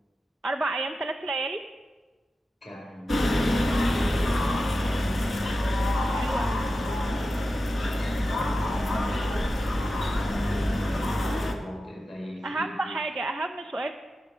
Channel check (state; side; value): normal; both; correlation 0.92